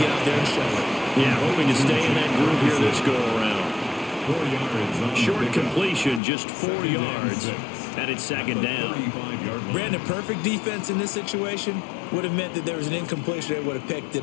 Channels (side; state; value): right; drops out; at 6.2 s